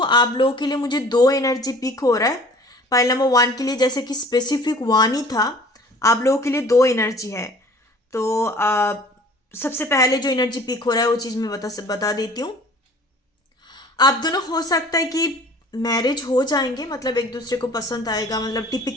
आप लोगों के लिए मुझे 2 एनर्जी पिक हो रहा है। पाइल नंबर 1 के लिए जैसे कि स्पेसिफिक 1 ही था, आप लोगों के लिए 2 एनर्जी है। तो सबसे पहले जो एनर्जी पिक हो रहा है वो चीज़ मैं बता देती हूँ। आप दोनों हो सकता है कि मैरिज हो जाएंगे, मतलब एक दूसरे को पसंद आएगा, मतलब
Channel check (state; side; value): normal; both; correlation 0.48